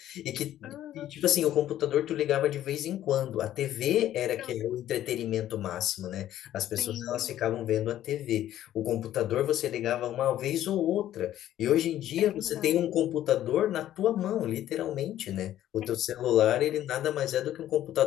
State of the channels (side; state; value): right; quieter; 12.5 dB